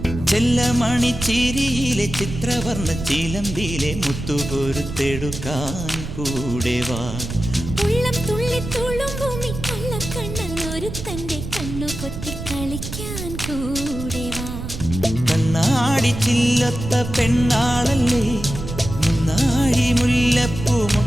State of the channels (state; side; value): noise; right; rumble, 8 dB below the sound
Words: ചെല്ലമണിച്ചിരിയിലെ ചിത്രവർണ്ണ ചിലമ്പിലെ മുത്തുകൊരുത്തെടുക്കാൻ കൂടെ വാ. ഉള്ളം തുള്ളി തുളുമ്പുമി കള്ളക്കണ്ണൻ ഒരുത്തന്റെ കണ്ണു പൊത്തി കളിക്കാൻ കൂടെ വാ. കണ്ണാടി ചില്ലത്ത പെണ്ണാളല്ലേ, മുന്നാഴി മുല്ലപ്പൂ